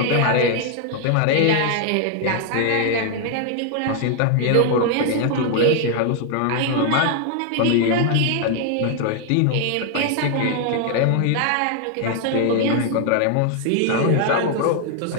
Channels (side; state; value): both; different; correlation 0.00